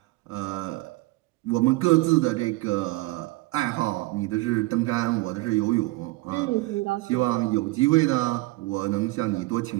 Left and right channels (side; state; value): left; quieter; 21.2 dB